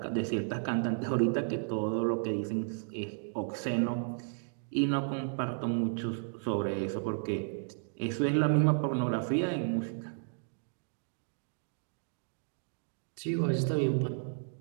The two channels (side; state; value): left; silent; digital silence